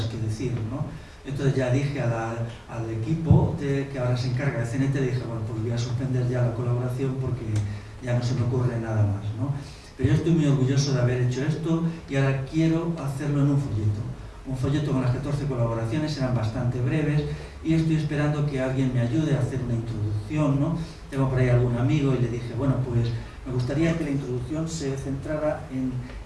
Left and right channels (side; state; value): both; identical; correlation 1.00